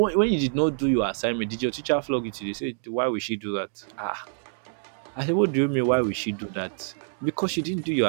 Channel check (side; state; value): left; silent; digital silence